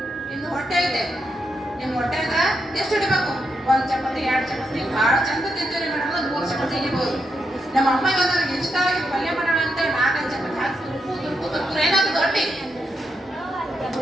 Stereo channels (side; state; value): both; normal; correlation 0.82